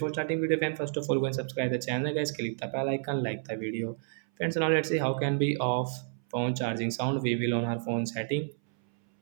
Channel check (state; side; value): silent; left; 58 dB below the other